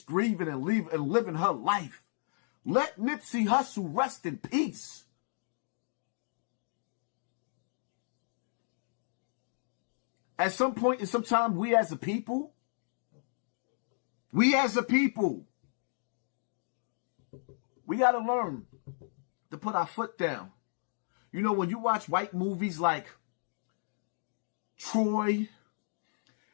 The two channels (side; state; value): right; silent; digital silence